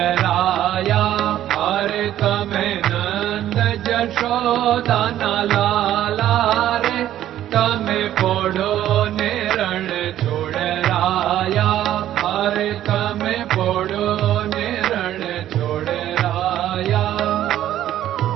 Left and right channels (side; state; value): left; quieter; 12.2 dB